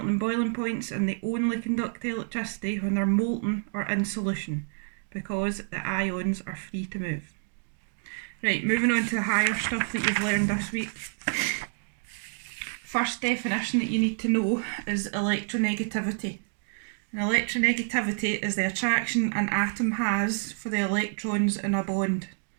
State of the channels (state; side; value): silent; left; 59 dB below the other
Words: and boiling points, and they only conduct electricity when they're molten or in solution, because the ions are free to move. Right, moving on to the higher stuff that you've learned this week. First definition that you need to know is electronegativity. And electronegativity is the attraction an atom has for the electrons in a bond.